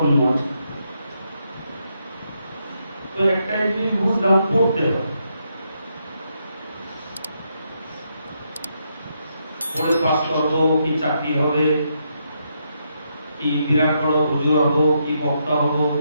নয়। তো একটাই জিনিস বুঝলাম, পড়তে হবে, পড়ে পাস করবো, কি চাকরি হবে, কি বিরাট বড় হুজুর হবো, কি বক্তা হবো,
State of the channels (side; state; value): both; inverted; correlation -0.79